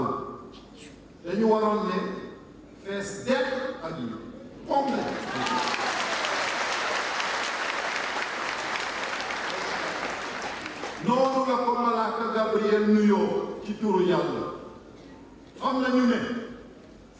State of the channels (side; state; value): both; identical; correlation 1.00